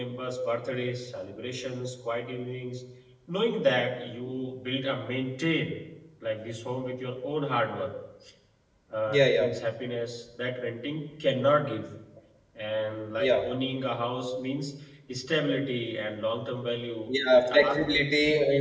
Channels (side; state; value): both; identical; correlation 1.00